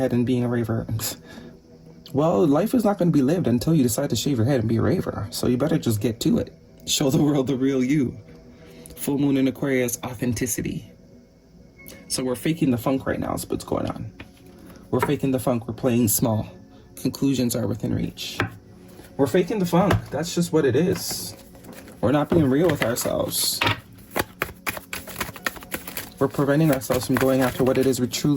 and being a raver. Well, life is not going to be lived until you decide to shave your head and be a raver. So you better just get to it. Show the world the real you. Full moon in Aquarius, authenticity. So we're faking the funk right now is what's going on. We're faking the funk. We're playing small. Conclusions are within reach. We're faking the funk. That's just what it is. We're not being real with ourselves. We're preventing ourselves from going after what it is we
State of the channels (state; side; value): identical; both; correlation 1.00